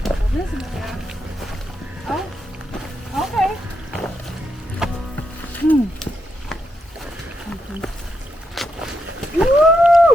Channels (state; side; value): normal; both; correlation 0.81